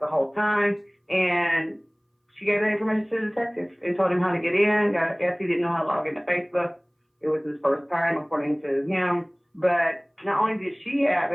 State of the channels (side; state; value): both; identical; correlation 1.00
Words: whole time, and she gave that information to the detective and told him how to get in. I guess he didn't know how to log into Facebook. It was his first time, according to him. But not only did she have